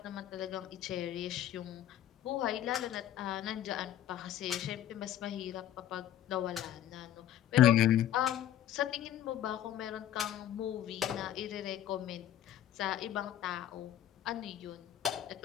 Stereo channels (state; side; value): quieter; right; 11.7 dB